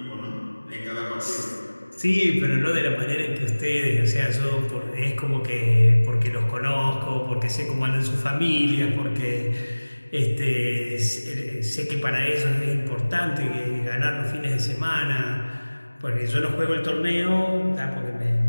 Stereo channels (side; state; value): both; inverted; correlation -1.00